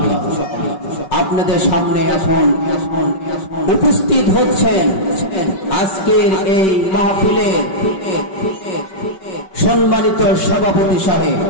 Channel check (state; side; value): late; right; 5.3 ms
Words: আপনাদের সামনে এখন উপস্থিত হচ্ছেন আজকের এই মাহফিলের সম্মানিত সভাপতি সাহেব।